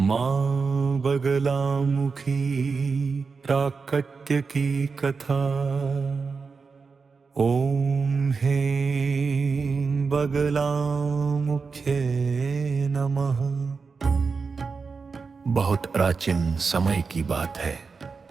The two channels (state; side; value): quieter; left; 4.9 dB